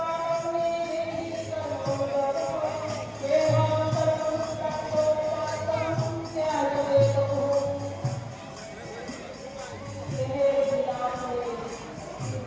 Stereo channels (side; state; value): both; identical; correlation 1.00